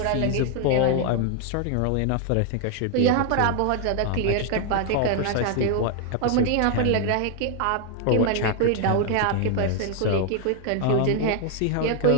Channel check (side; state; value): both; different; correlation 0.00